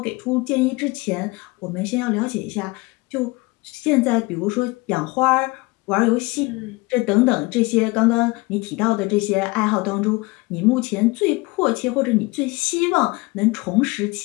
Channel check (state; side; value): quieter; right; 24.0 dB